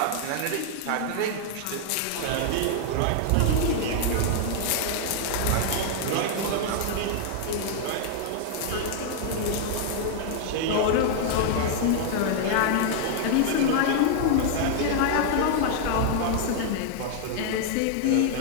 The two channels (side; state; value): both; different; correlation 0.00